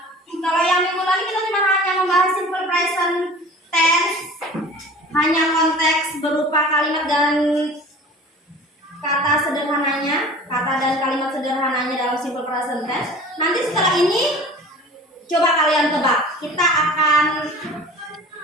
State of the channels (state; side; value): normal; both; correlation 0.42